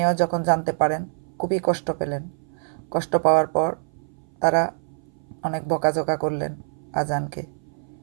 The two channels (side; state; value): left; silent; 58 dB below the other